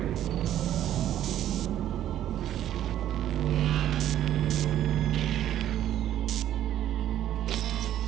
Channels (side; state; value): left; quieter; 11.8 dB